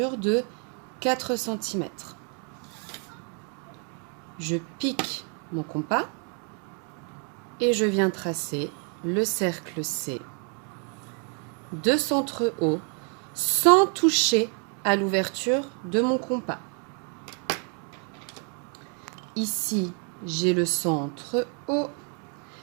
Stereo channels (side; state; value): left; quieter; 39.9 dB